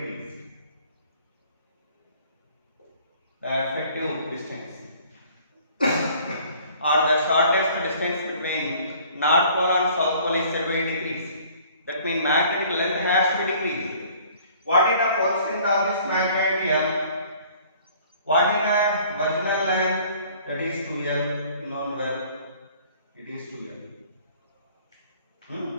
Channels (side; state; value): both; inverted; correlation -0.54